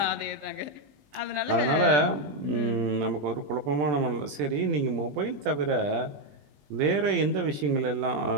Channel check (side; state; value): left; late; 20 ms